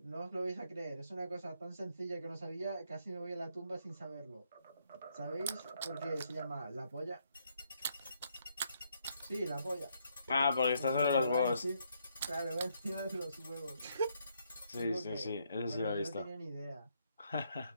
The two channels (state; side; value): inverted; both; correlation -0.74